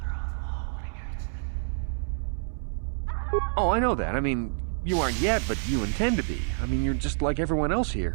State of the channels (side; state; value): left; silent; 59 dB below the other